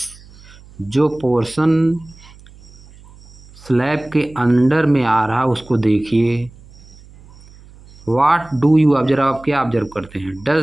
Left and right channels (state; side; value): noise; right; hum, 23 dB below the sound